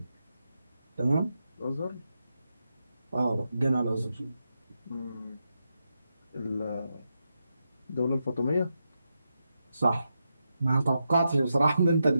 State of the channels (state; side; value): inverted; both; correlation -0.86